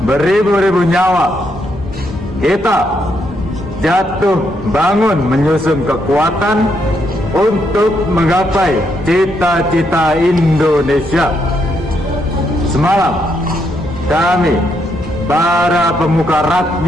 beribu-ribu nyawa. Kita jatuh bangun menyusun kekuatan untuk menggapai cita-cita Indonesia. Semalam, kami, para pemuka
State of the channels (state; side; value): normal; both; correlation 0.77